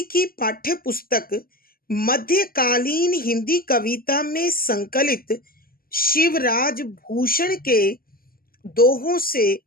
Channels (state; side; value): late; right; 0.42 ms